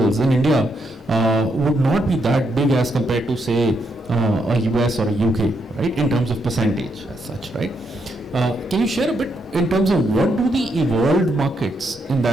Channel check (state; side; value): normal; both; correlation 0.79